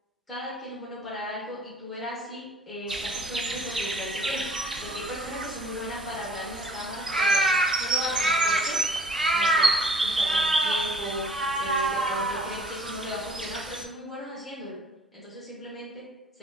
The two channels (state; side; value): normal; both; correlation 0.54